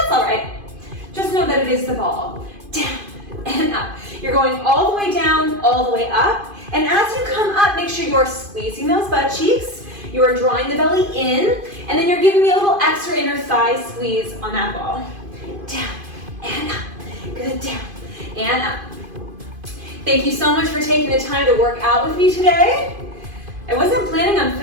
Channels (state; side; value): late; left; 2.5 ms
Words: all right. Just know that it is the ball. Down and up. You're going all the way down, all the way up. And as you come up, make sure you're squeezing those butt cheeks. You are drawing the belly in, and then you're giving me a little extra inner thigh squeeze on that ball. Down and up. Good, down and up. Thank you so much for taking the time to work out with me today. I wasn't planning on